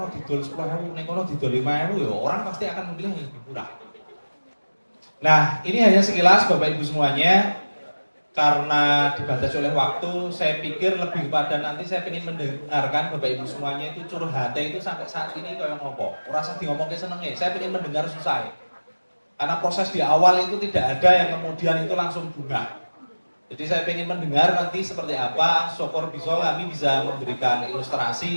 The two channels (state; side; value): inverted; both; correlation -1.00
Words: didol 10.000, yang kono didol 5.000 ya orang pasti akan memilih yang lebih murah. Nah, ini hanya sekilas Bapak Ibu semuanya. Karena dibatasi oleh waktu, saya pikir lebih kepada nanti saya ingin mendengarkan Bapak Ibu semuanya itu curhatnya itu sampai saat ini kayak ngopo. Rasa di ngomongnya senengnya, saya ingin mendengar susah. Karena proses di awal itu tidak ada yang kemudian itu langsung bunga. Jadi saya ingin mendengar nanti seperti apa, syukur kami bisa memberikan